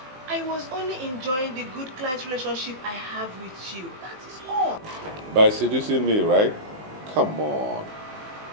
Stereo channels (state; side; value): late; left; 19 ms